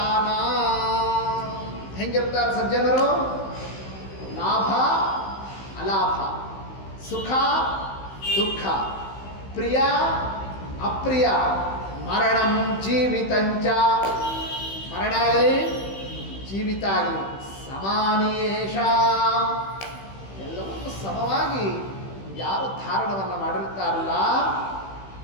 ಹೆಂಗಿರ್ತಾರೆ ಸಜ್ಜನರು? ಲಾಭ ಅಲಾಭ, ಸುಖ ದುಃಖ, ಪ್ರಿಯ ಅಪ್ರಿಯ, ಮರಣಂ ಜೀವಿತಂಚ, ಮರಣ ಆಗಲಿ ಜೀವಿತ ಆಗಲಿ, ಸಮಾನೇಶ, ಎಲ್ಲವನ್ನೂ ಸಮವಾಗಿ ಯಾರು ಧಾರಣವನ್ನು ಮಾಡಿರ್ತಾರಲ್ಲ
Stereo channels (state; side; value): late; right; 15 ms